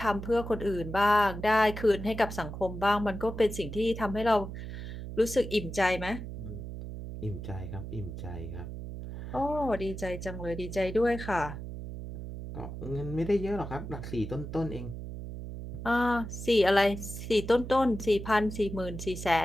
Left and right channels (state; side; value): noise; right; hum, 8 dB below the sound